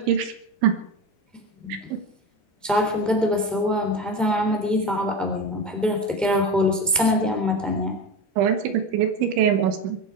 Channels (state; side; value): normal; both; correlation 0.23